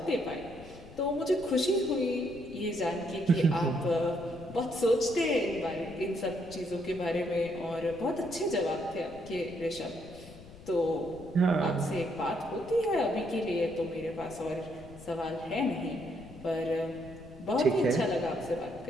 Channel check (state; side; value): noise; left; rumble, 18 dB below the sound